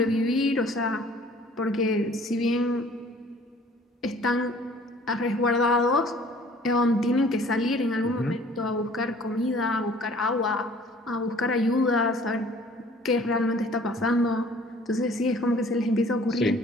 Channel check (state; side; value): normal; both; correlation 0.53